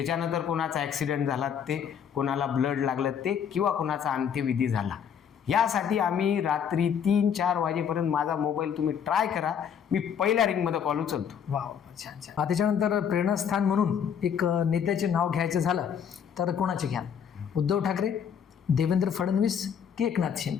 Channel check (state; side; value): quieter; right; 7.9 dB